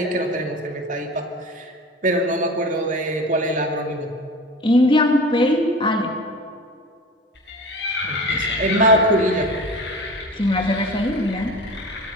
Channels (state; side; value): normal; both; correlation 0.35